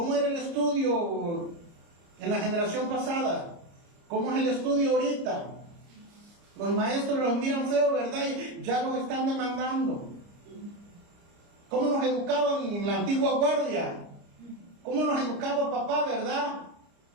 era el estudio en la generación pasada? ¿Cómo es el estudio ahorita? Los maestros los miran feo, ¿verdad? Y ya los están demandando. ¿Cómo nos educaban en la antigua guardia? ¿Cómo nos educaba papá, verdad?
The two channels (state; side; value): late; left; 30 ms